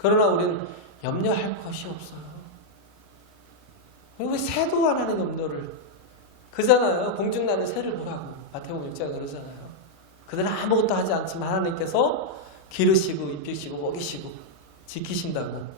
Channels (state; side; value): normal; both; correlation -0.02